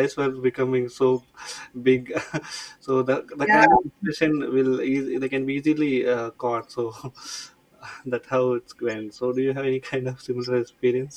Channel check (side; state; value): both; identical; correlation 1.00